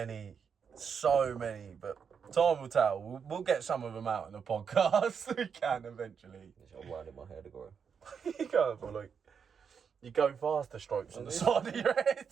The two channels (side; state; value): left; quieter; 6.6 dB